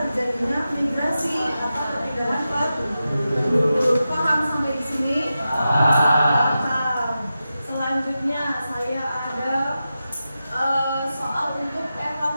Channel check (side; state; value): both; inverted; correlation -0.91